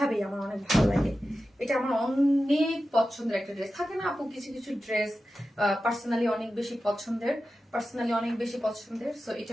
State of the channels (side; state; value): both; normal; correlation 0.93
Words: আমার অনেক ভালো লাগে। এটা আমার অনেক পছন্দের একটা ড্রেস। থাকে না আপু কিছু কিছু ড্রেস পার্সোনালি অনেক বেশি পছন্দের, সো এটা